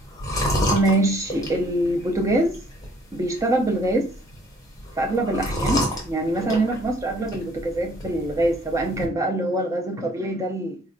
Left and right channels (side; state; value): both; normal; correlation 0.59